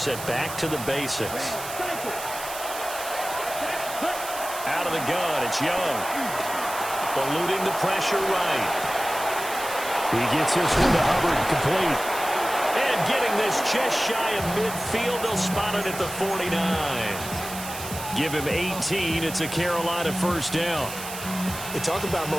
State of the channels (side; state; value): right; noise; hiss, 10 dB below the sound